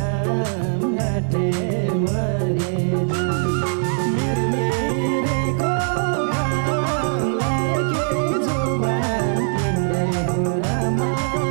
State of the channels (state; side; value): silent; left; 61 dB below the other